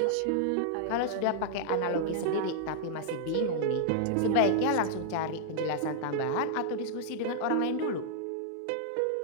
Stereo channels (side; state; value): both; different; correlation -0.01